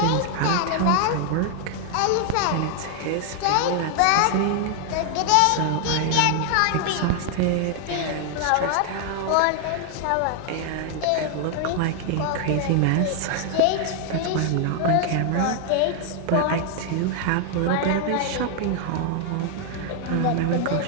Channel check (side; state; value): both; different; correlation 0.00